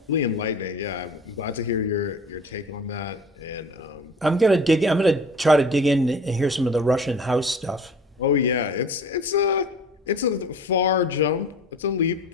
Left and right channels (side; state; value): both; normal; correlation 0.42